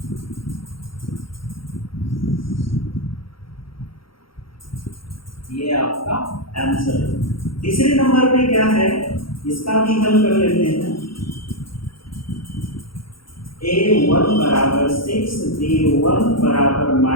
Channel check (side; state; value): right; late; 0.74 ms